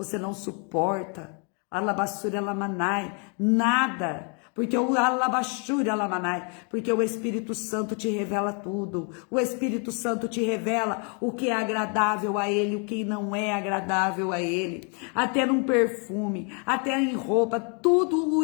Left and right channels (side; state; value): right; quieter; 37.9 dB